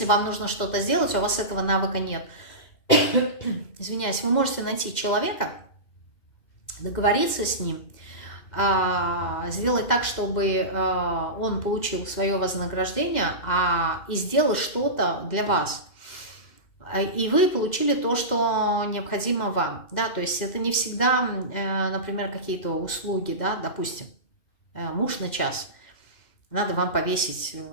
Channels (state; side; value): late; right; 2.1 ms